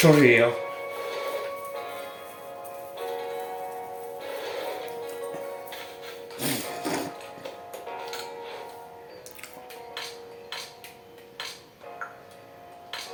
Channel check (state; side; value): identical; both; correlation 1.00